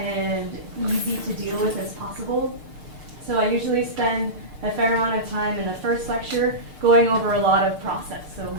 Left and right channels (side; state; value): left; late; 6.6 ms